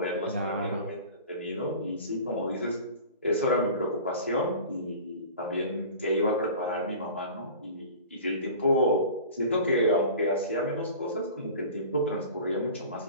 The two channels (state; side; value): inverted; both; correlation -0.40